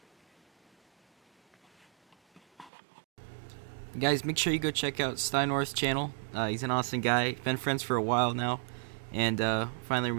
Guys, make sure you go check out Steinorth's channel. He's an awesome guy. Been friends for a while now, and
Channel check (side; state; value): left; drops out; at 2.7 s